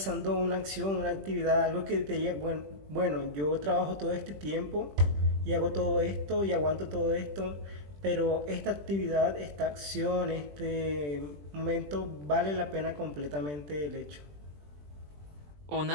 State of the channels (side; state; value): left; late; 20 ms